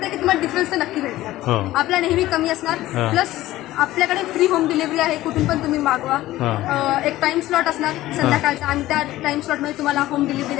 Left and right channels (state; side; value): quieter; right; 15.9 dB